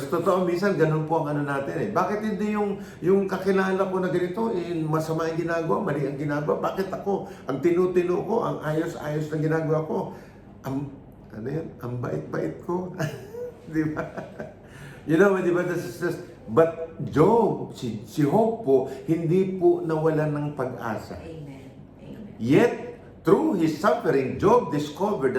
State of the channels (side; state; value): both; identical; correlation 1.00